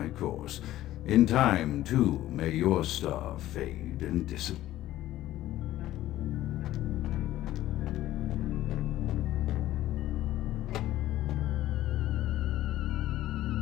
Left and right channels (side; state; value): right; quieter; 14.4 dB